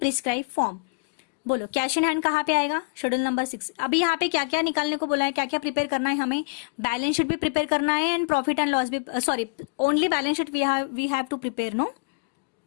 form. बोलो cash in hand कहाँ पे आएगा? Schedule number 6। अभी यहाँ पे क्या क्या निकालने को बोला है, क्या क्या प्रिपेयर करना है हमें? बैलेंस शीट भी प्रिपेयर करना है एंड प्रॉफिट एंड लॉस भी, sorry only balance sheet we have to prepare, no?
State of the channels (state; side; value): quieter; right; 32.3 dB